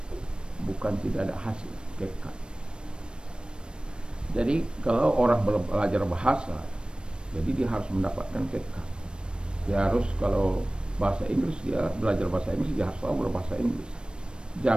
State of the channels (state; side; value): late; left; 0.053 ms